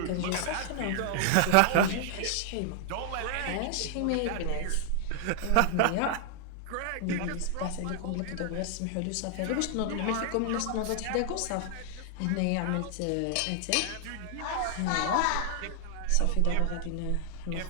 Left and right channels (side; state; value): both; different; correlation 0.00